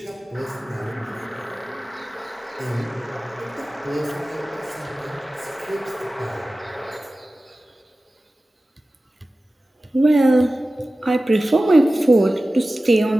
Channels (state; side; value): normal; both; correlation 0.96